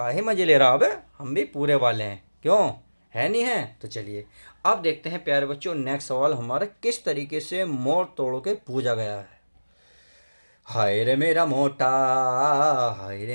मज़े ले रहा है बे, हम भी पूरे वाले हैं, क्यों है नहीं है। तो चलिए अब देखते हैं प्यारे बच्चों, नेक्स्ट सवाल हमारा किस तरीके से मोड़ तोड़ के पूछा गया है। हाय रे मेरा मोटा, हाय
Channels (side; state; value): both; inverted; correlation -1.00